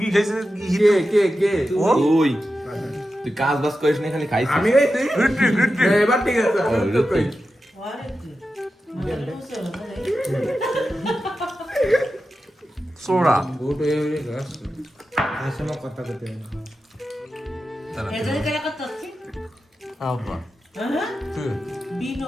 খাইছে কে ও ওই তুই কাজ বাজ করিস না খালি খাইছিস আমি এই তুই এবার ঠিক আছে সোরা গোট হয়ে গেলে গাছ আসলে কথা করতে হবে এদের কেন কথা হচ্ছে আব্বা হ্যাঁ তুই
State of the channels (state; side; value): normal; both; correlation 0.91